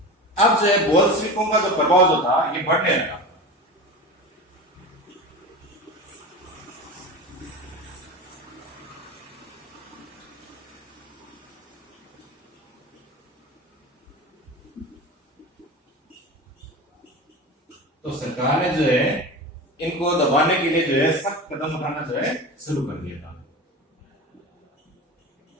अब जो है बोल्शेविकों का जो प्रभाव जो था ये बढ़ने लगा। तो सरकार ने जो है इनको दबाने के लिए जो है सख्त कदम उठाना जो है शुरू कर दिया था।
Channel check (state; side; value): normal; both; correlation 0.29